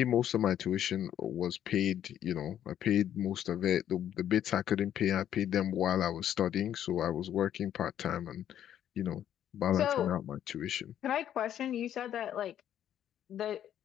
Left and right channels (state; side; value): quieter; right; 10.6 dB